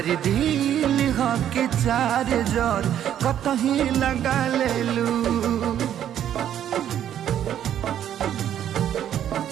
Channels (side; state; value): left; quieter; 10.4 dB